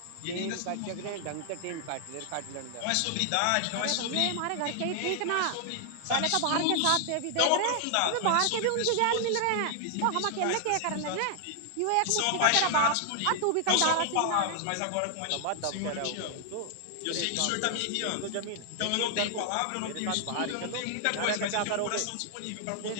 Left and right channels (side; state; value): both; different; correlation 0.00